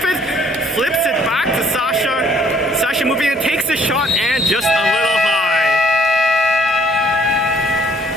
it. Flips it back to Sasha. Sasha moving in, takes the shot, and just a little high.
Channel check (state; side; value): normal; both; correlation 0.61